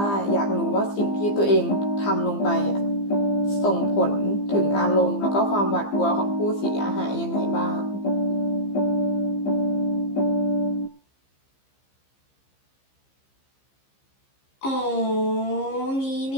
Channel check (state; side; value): late; right; 15 ms